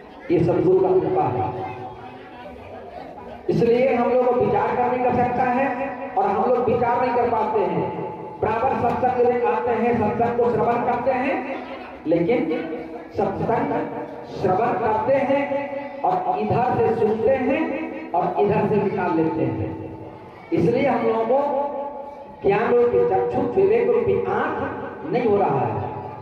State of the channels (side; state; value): both; identical; correlation 1.00